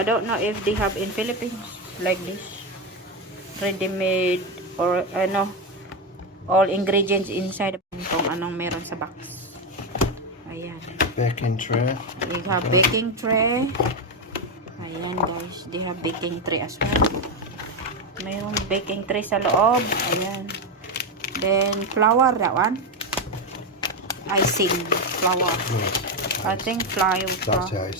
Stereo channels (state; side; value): normal; both; correlation 0.09